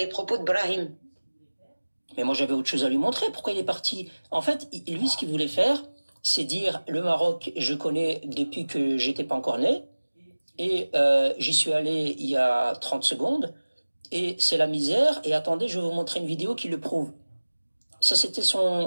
propos de Brahim? Mais moi, j'avais autre chose à lui montrer. Pourquoi il est parti? En fait, lui, ce qu'il voulait faire, c'est dire le Maroc, je connais depuis que j'étais pas encore né, et j'y suis allé il y a 30 secondes, et c'est la misère. Et attendez, je vais vous montrer une vidéo qui le prouve. Ça, c'était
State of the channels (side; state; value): both; inverted; correlation -1.00